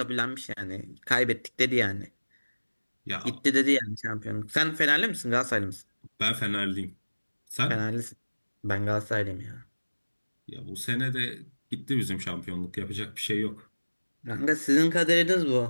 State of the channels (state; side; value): inverted; both; correlation -1.00